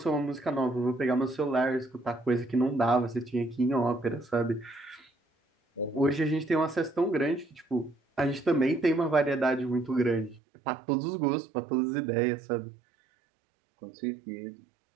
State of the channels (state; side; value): drops out; left; at 10.4 s